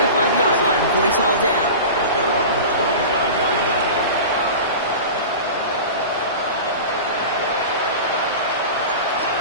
line before he's hauled down.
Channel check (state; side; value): inverted; both; correlation -0.32